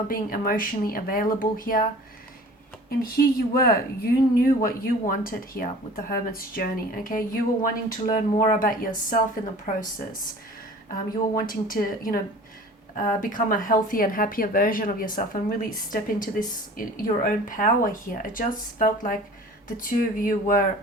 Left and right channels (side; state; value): both; normal; correlation 0.44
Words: being emotionally available here. And here you were, you knew what you wanted here with the Hermit's journey, okay? You were wanting to learn more about yourself in the process. You were wanting to, become a healthier and happier version of yourself and really step into this, your own power here. It just felt like the two of you were